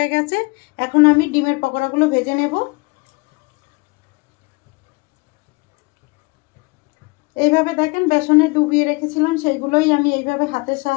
গেছে। এখন আমি ডিমের পকোড়াগুলো ভেজে নেব। এইভাবে দেখেন বেসনে ডুবিয়ে রেখেছিলাম সেইগুলোই আমি এইভাবে হাতের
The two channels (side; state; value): right; quieter; 28.1 dB